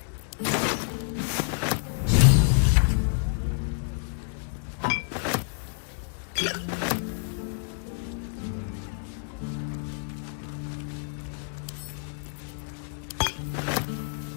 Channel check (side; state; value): right; silent; 59 dB below the other